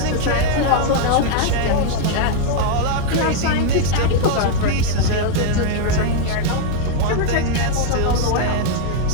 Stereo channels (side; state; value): both; different; correlation 0.00